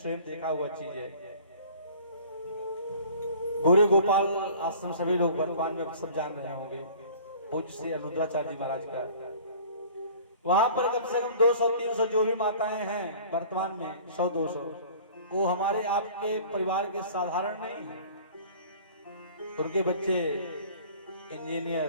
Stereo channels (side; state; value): both; inverted; correlation -0.47